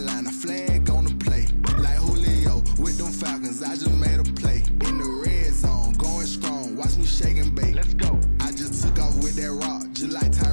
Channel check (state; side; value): inverted; both; correlation -1.00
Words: a flag on the play. Like Julio with them Falcons, I just made a play. In the red zone, going strong, watch me shake and bake. Let's go. I just took off with that rock, just like